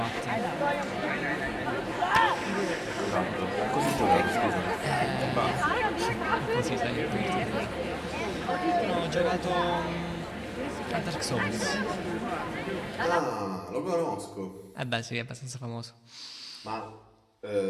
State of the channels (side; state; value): both; identical; correlation 1.00